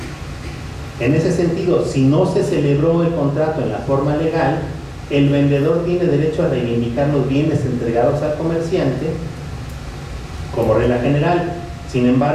En ese sentido, si no se celebró el contrato en la forma legal, el vendedor tiene derecho a reivindicar los bienes entregados al comerciante como regla general. Sin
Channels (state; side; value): identical; both; correlation 1.00